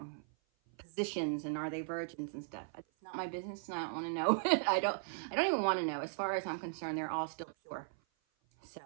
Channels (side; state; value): left; silent; 53 dB below the other